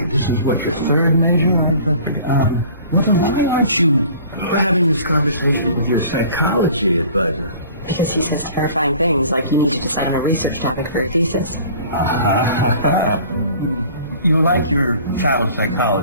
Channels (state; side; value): inverted; both; correlation -0.48